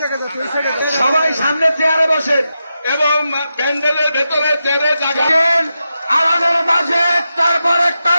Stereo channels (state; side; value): inverted; both; correlation -0.89